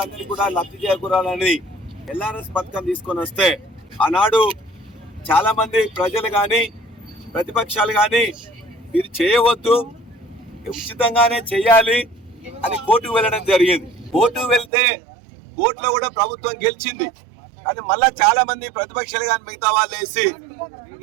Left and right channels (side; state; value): left; drops out; at 14.7 s